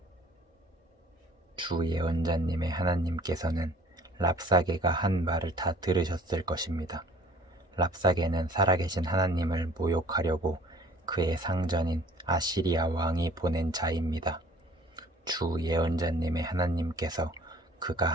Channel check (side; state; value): both; normal; correlation 0.52